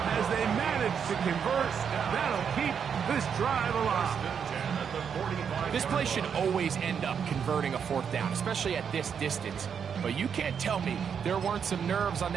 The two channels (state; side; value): quieter; left; 7.2 dB